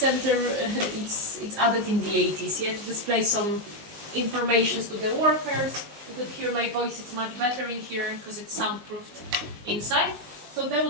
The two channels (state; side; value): late; left; 19 ms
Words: it's added in the 80s, to display some information to the workers. You could hear my voice; it's much better in here because it's soundproofed inside. So they